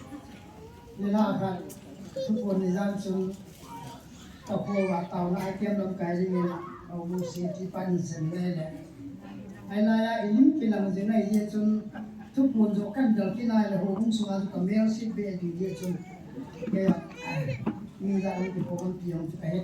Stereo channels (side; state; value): both; identical; correlation 1.00